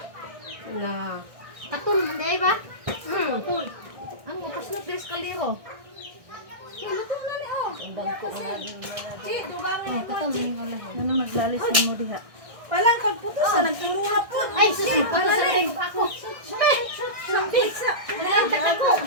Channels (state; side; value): late; left; 1.6 ms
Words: Wala. Katul, hindi ba? Katul. Ang upos na pres kaldero. Ay, luto na ni oh. Chi, dugangan Oh, katul, hindi ko lang. Ano naglalis na mo diha? Palang pagputos na nagtumuha po. Ay, susunod pa sa rin ako. Sampit sa.